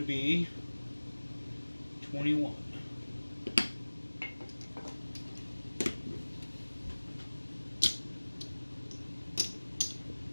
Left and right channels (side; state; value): both; inverted; correlation -1.00